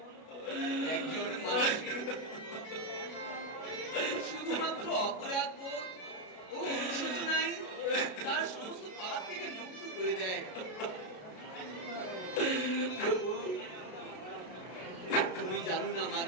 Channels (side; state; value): right; late; 33 ms